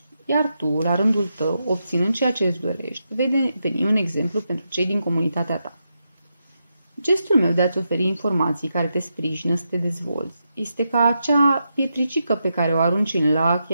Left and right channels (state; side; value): inverted; both; correlation -0.85